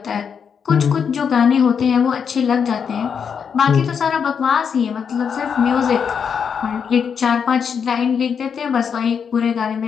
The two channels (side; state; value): right; quieter; 6.9 dB